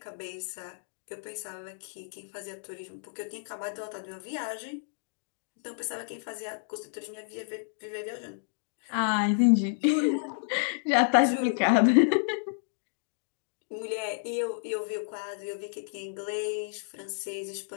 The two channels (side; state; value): right; silent; digital silence